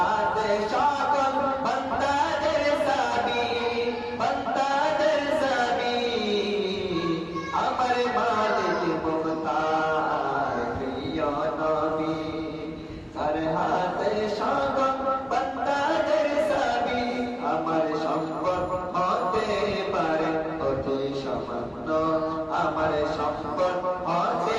সকল বান্দাদের সাবি, বান্দাদের সাবি। আমার মালিক মুখতার প্রিয় নবী, যার হাতে সকল বান্দাদের সাবি। আমার সম্পদ হতে পারে অতি সামান্য, আমার সম্পদ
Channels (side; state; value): both; identical; correlation 1.00